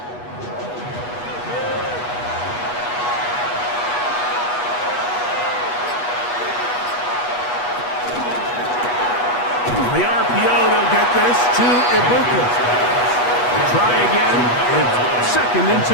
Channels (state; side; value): late; right; 8.2 ms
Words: The RPO, they'll get this to Ibuka. Try again. It's second and